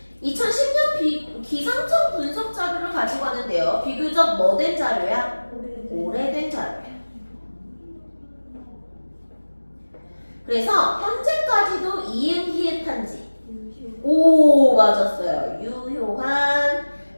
2010년 기상청 분석 자료를 가지고 왔는데요. 비교적 뭐된 자료야? 오래된 자료야. 그래서 현재까지도 이응 히읗한지 오 맞았어요. 유효한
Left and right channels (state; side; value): inverted; both; correlation -1.00